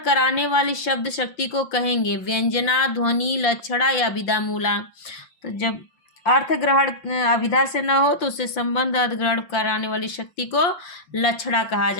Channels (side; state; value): right; late; 5.8 ms